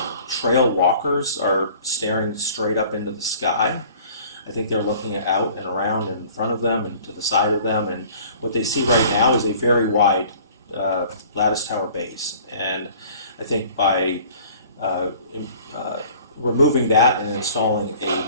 trail walkers are staring straight up into the sky. I think they're looking out and around in front of them and to the side of them, and what they see right now is a very wide lattice tower base. And I think by removing that and installing a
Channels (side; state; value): both; inverted; correlation -0.50